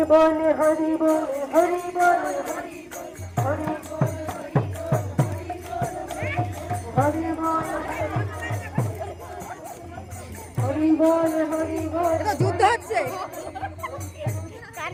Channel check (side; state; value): both; identical; correlation 1.00